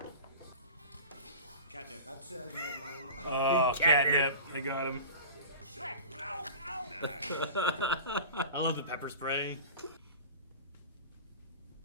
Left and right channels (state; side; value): inverted; both; correlation -0.35